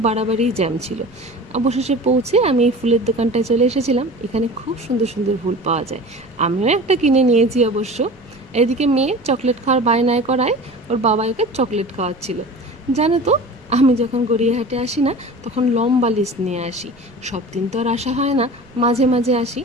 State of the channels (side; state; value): right; noise; rumble, 30 dB below the sound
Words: বাড়াবাড়িই জ্যাম ছিল। অবশেষে পৌঁছে আমি এই ফুলের দোকানটায় চলে এসেছিলাম। এখানে খুব সুন্দর সুন্দর ফুল পাওয়া যায়, আমিও একটা কিনে নিয়েছি অবশ্য। এদিকে মেয়ে চকলেট খাওয়ার বায়নায় করায় ওর বাবা ওকে চকলেট খাওয়াচ্ছিল। জানো তো, আমি যখন গড়িয়াহাটে আসি না, তখন লম্বা লিস্ট নিয়ে আসি। সব দিন তো আর আসা হয় না, মাঝে মাঝে আসি,